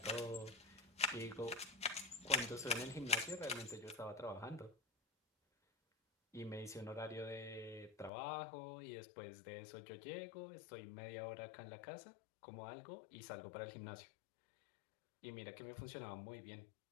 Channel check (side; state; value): right; drops out; at 8.1 s